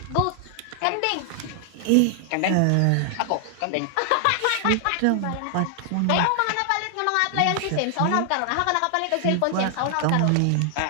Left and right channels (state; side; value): different; both; correlation 0.00